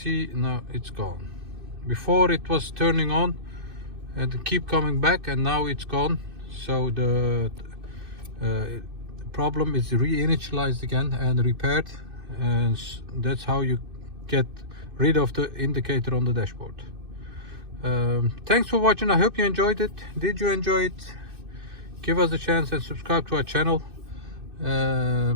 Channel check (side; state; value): left; late; 2.6 ms